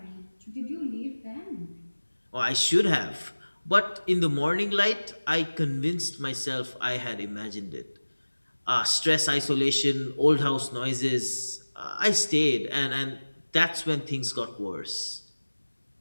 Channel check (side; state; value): both; inverted; correlation -1.00